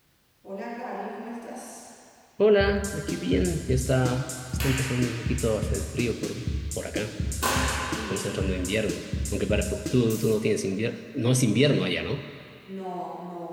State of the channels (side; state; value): both; identical; correlation 1.00